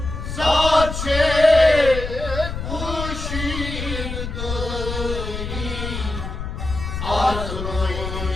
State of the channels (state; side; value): noise; left; rumble, 6 dB below the sound